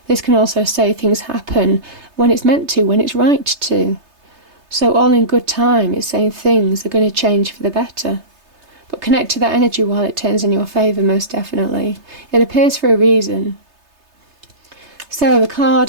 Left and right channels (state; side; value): late; left; 3.3 ms